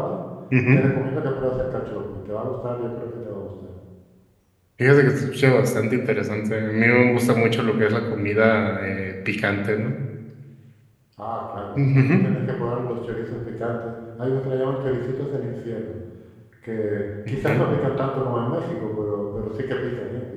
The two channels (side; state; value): both; identical; correlation 1.00